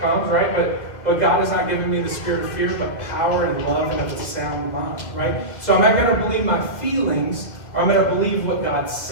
comes, right? But God has not given me the spirit of fear, but power and love and of a sound mind, right? So am I going to believe my feelings, or I'm going to believe what God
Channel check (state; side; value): late; right; 2.2 ms